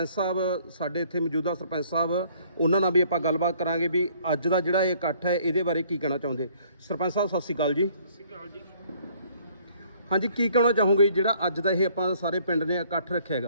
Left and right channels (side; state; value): both; inverted; correlation -0.61